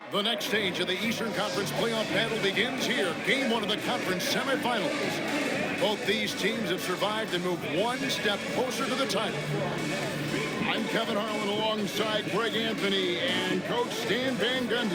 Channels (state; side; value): identical; both; correlation 1.00